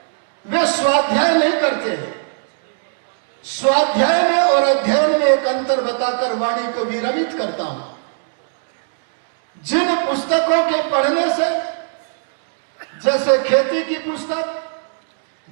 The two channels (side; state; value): left; silent; digital silence